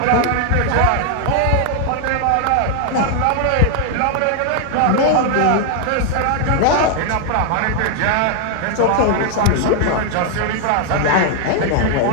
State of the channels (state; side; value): different; both; correlation 0.00